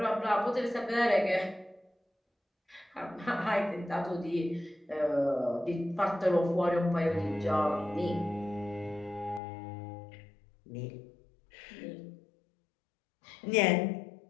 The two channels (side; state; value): right; drops out; at 9.4 s